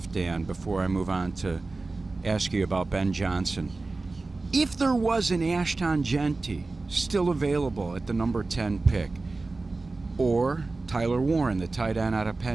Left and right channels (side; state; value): left; quieter; 3.5 dB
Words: Dan, before I move on to ask you about Ben Johnson. If there was an Ashton Genty still available at the number 10 pick, or Tyler Warren, the tight end out of